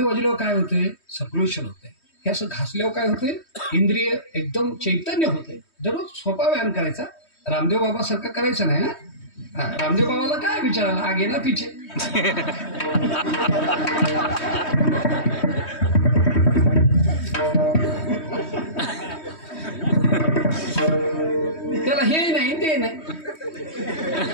वाजल्यावर काय होते? सर्क्युलेशन होते. हे असं घासल्यावर काय होते? इंद्रिय एकदम चैतन्य होते. दररोज सोपा व्यायाम करायचा. रामदेव बाबा सारखं करायचं नाही. हा, रामदेव बाबाला काय विचारायला, आगे ना पिछे. त्याला हे नाही ते नाही,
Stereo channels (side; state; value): right; late; 3.2 ms